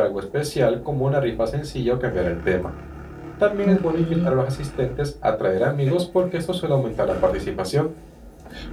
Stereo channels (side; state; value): both; identical; correlation 1.00